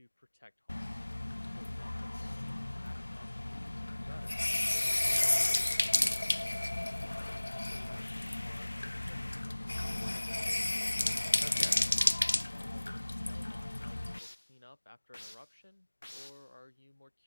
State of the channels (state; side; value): inverted; both; correlation -1.00